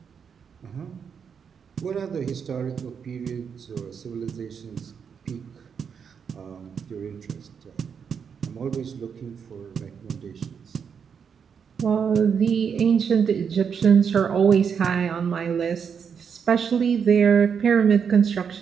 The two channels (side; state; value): left; quieter; 6.8 dB